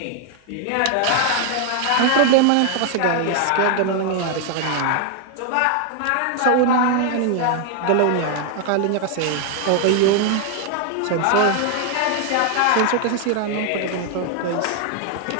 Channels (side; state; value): both; different; correlation 0.00